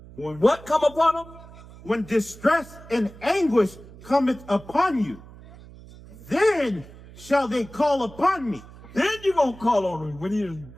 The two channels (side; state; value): right; noise; hum, 19 dB below the sound